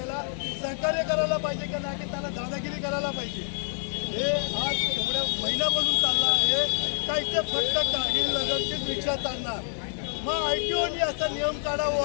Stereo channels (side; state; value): right; silent; digital silence